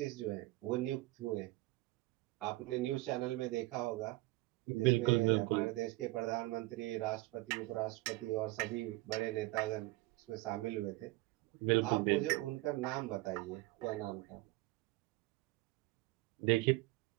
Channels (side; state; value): left; quieter; 20.7 dB